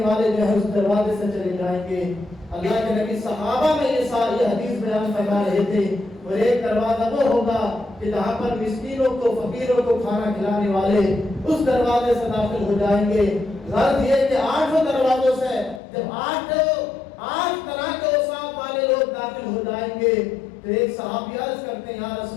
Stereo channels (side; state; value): right; drops out; at 15.8 s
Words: والے جو ہے اس دروازے سے چلے جائیں گے۔ اللہ کے نبی صحابہ میں یہ ساری حدیث بیان فرما رہے تھے، اور ایک دروازہ وہ ہوگا کہ جہاں پر مسکینوں کو، فقیروں کو کھانا کھلانے والے اس دروازے سے داخل ہو جائیں گے۔ غرض یہ کہ 8 دروازوں سے جب 8 طرح کے اوصاف والے لوگ داخل ہو جائیں گے تو ایک صحابی عرض کرتے ہیں یا